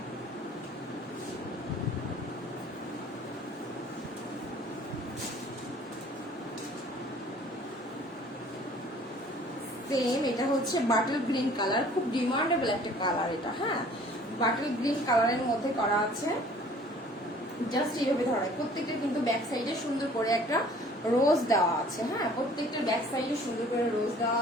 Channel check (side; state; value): both; normal; correlation 0.52